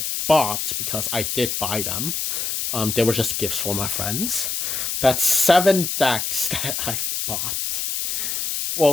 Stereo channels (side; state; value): left; noise; hiss, 2 dB below the sound